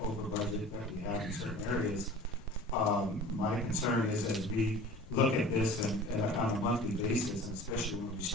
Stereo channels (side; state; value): left; noise; rumble, 19 dB below the sound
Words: budget that we have in certain areas. My concern is as we look at this and on a monthly basis, and especially when we